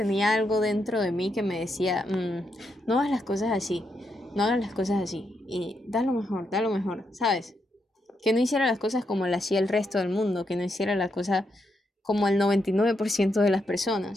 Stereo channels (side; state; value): both; normal; correlation 0.81